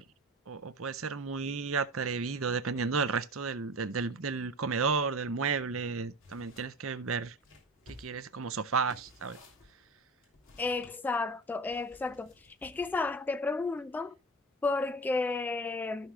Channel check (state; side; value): normal; both; correlation 0.33